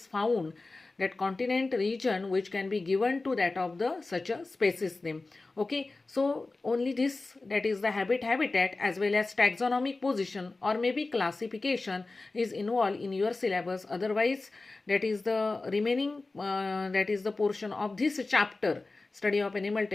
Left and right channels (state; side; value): quieter; right; 3.4 dB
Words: found, that continent region which can be given to that of the such a species name. Okay, so only this, that is the habitat as well as taxonomic position or maybe classification is involved in your syllabus. Otherwise, that is the remaining that is the portion of this chapter, study of animal